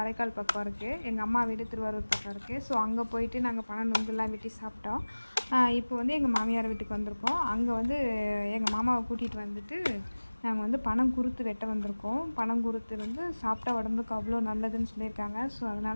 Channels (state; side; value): inverted; both; correlation -1.00